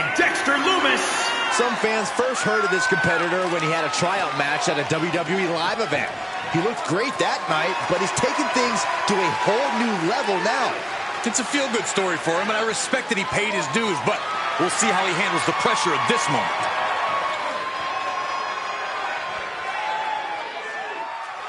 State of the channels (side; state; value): both; identical; correlation 1.00